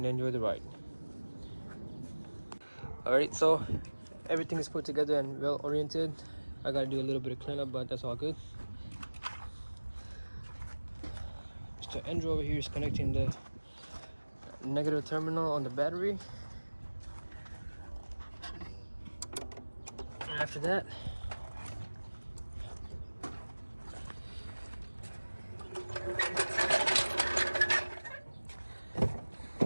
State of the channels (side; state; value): both; inverted; correlation -1.00